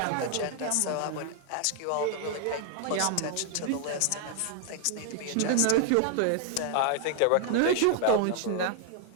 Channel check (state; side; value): different; both; correlation 0.00